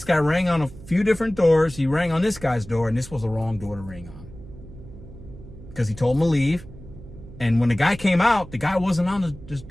guy rang on a few different doors. He rang on this guy's door, and this was the wrong door to ring on. Because he told him to leave. And when the guy came out, the guy wasn't on his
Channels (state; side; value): noise; right; hum, 17 dB below the sound